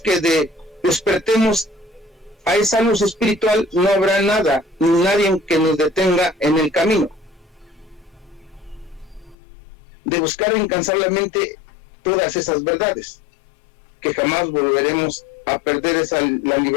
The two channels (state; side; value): drops out; right; at 9.3 s